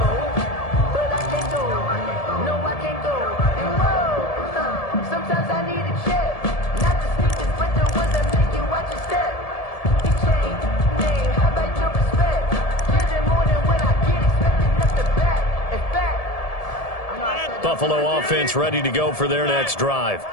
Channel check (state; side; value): late; right; 1.7 ms